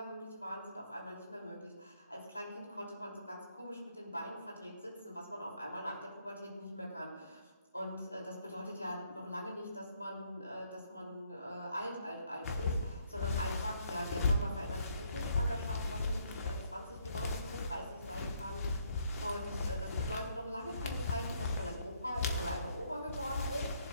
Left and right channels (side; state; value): both; inverted; correlation -0.70